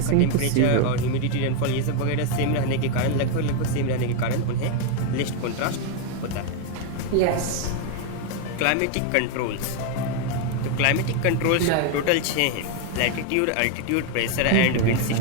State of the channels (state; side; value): different; both; correlation 0.01